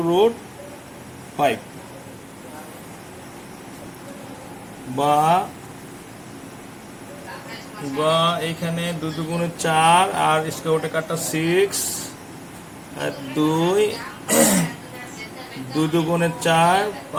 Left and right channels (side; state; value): both; identical; correlation 1.00